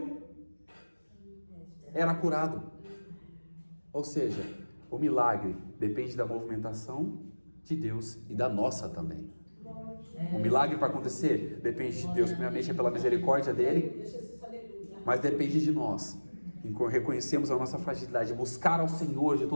era curado. Ou seja, o milagre depende da movimentação de Deus e da nossa também. O milagre para acontecer depende de Deus, primeiramente é pela misericórdia dele, mas depende de nós. Reconhecemos a nossa fragilidade, buscar ao Senhor de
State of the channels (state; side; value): inverted; both; correlation -1.00